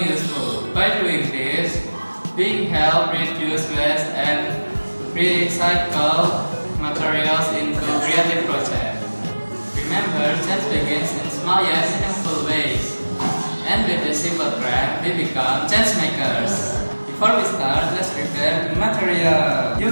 By doing this, we help reduce waste and recycle materials into creative projects. Remember, change begins in small yet meaningful ways. And with a simple craft, we become change makers. Before we start, let's prepare the material. You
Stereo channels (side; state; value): both; inverted; correlation -1.00